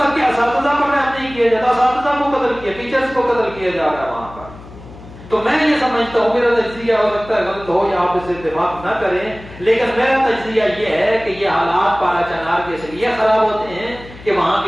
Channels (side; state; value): left; noise; hum, 18 dB below the sound